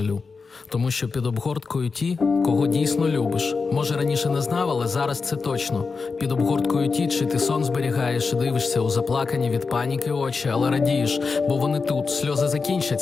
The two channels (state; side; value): quieter; right; 4.6 dB